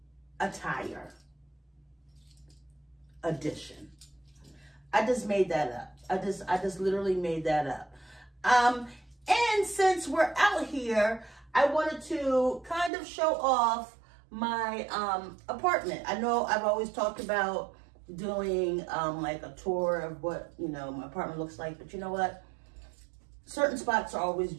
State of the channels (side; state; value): left; drops out; at 12.9 s